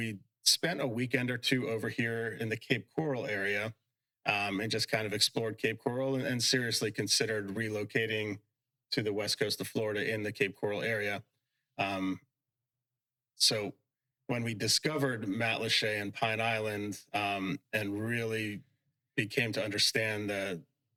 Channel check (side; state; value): both; identical; correlation 1.00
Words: spent a weekend or two over here in the Cape Coral area, and just kind of explored Cape Coral, and seriously considered relocating to the west coast of Florida in the Cape Coral area. So when we discovered Matlacha and Pine Island, and really became to understand